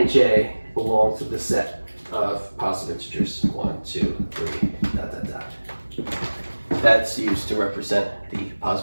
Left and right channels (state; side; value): inverted; both; correlation -1.00